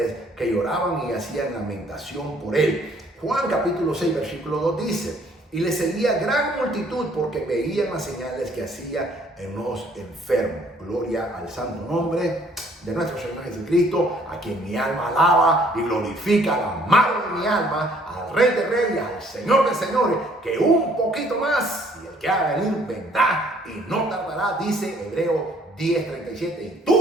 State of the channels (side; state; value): both; normal; correlation 0.61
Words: que lloraban y hacían lamentación por él. Juan capítulo 6, versículo 2 dice: y le seguía gran multitud porque veían las señales que hacía en los enfermos. Gloria al santo nombre de nuestro Señor Jesucristo, a quien mi alma alaba y glorifica, al amado de mi alma, al Rey de Reyes, al Señor de Señores, que un poquito más, y el que haga venir vendrá y no tardará, dice Hebreo 10:37. Y